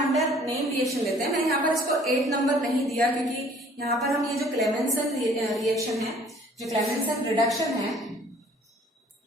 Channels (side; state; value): both; normal; correlation 0.55